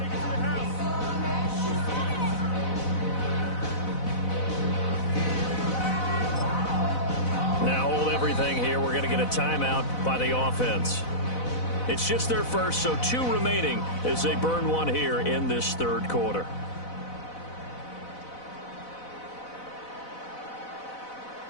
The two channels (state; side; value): late; right; 4.0 ms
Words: Now hold everything here. We're going to get a timeout by the offense. It's just their first, so 2 remaining as they burn one here in this third quarter.